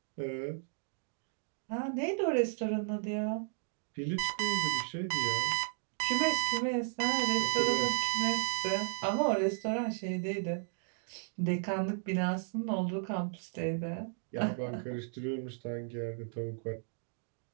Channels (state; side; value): silent; left; digital silence